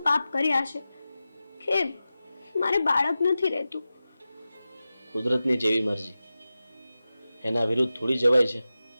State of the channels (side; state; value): both; inverted; correlation -0.94